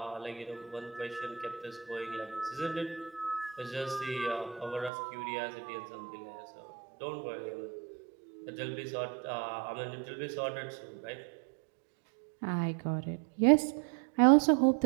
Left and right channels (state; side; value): drops out; left; at 4.9 s